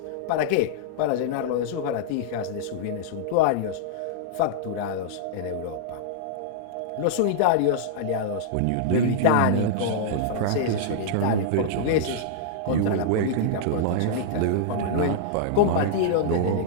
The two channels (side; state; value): both; different; correlation -0.01